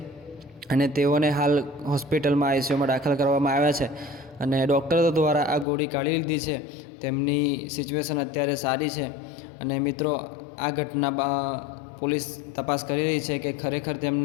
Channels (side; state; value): right; drops out; at 5.7 s